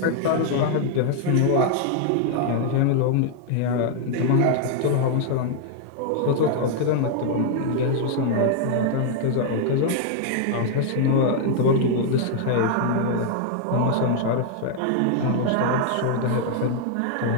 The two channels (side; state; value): both; different; correlation 0.00